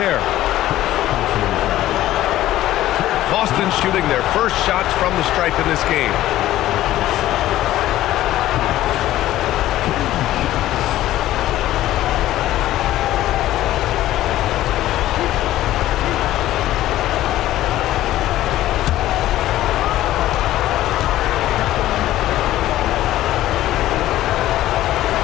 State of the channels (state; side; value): quieter; right; 14.4 dB